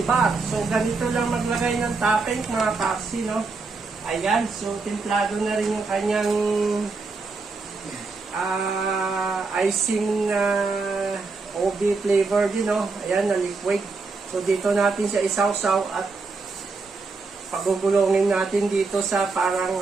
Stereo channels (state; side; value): quieter; left; 4.0 dB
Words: So, ganito lang maglagay ng topping mga paksi, no? Ayan, so templado na rin yung kanyang icing na OB flavor din, no? Ayan, na liquid. So, dito natin siya isawsaw at pagugulongin natin dito sa parang